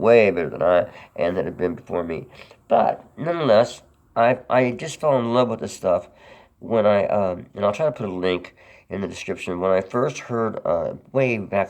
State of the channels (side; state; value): both; identical; correlation 1.00